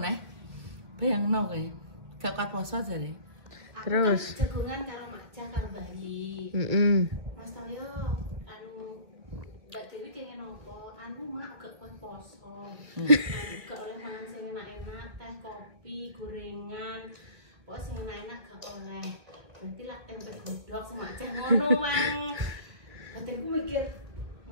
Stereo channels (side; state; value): left; late; 1.8 ms